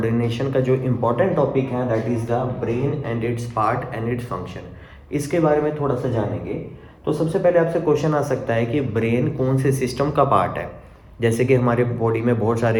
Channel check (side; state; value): both; identical; correlation 1.00